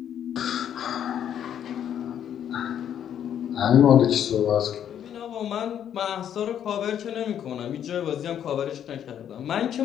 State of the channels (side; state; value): right; quieter; 9.6 dB